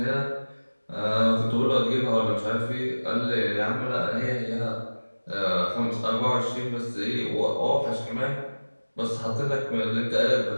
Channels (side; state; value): both; inverted; correlation -1.00